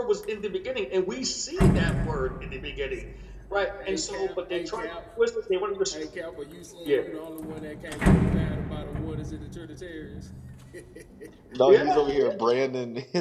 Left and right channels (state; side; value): identical; both; correlation 1.00